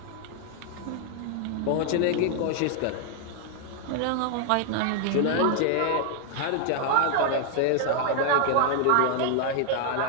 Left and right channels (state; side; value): different; both; correlation 0.00